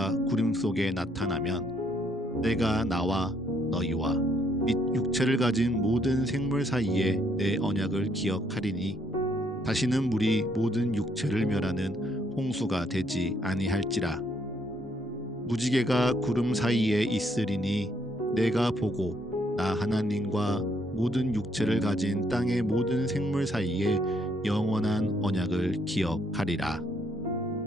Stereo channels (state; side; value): normal; both; correlation 0.70